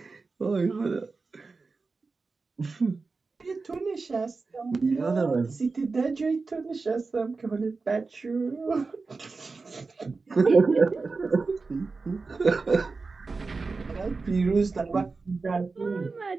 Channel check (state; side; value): quieter; left; 4.1 dB